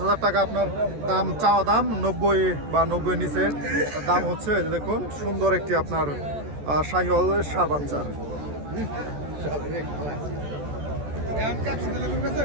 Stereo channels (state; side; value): late; left; 14 ms